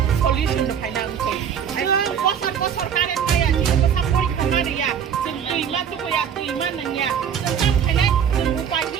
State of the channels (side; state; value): left; quieter; 8.0 dB